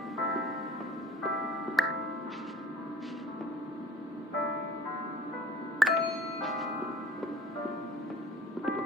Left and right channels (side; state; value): both; normal; correlation 0.48